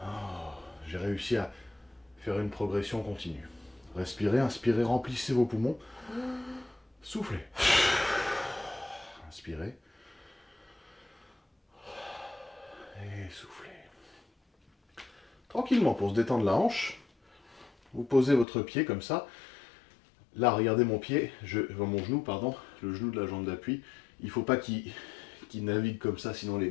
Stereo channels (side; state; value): right; drops out; at 18.4 s